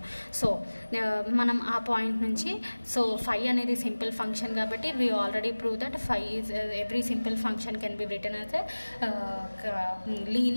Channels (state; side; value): inverted; both; correlation -1.00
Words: సో మనం ఆ పాయింట్ నుంచి, సో phi అనేది సింపుల్ ఫంక్షన్ కాబట్టి we already prove that phi is every simple function can be return as